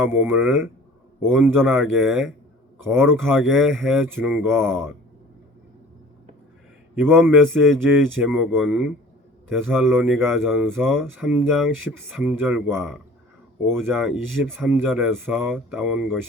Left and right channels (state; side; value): normal; both; correlation 0.46